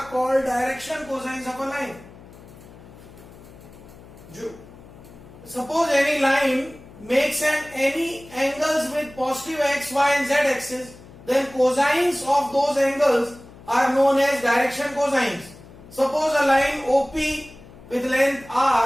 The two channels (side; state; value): left; noise; hum, 20 dB below the sound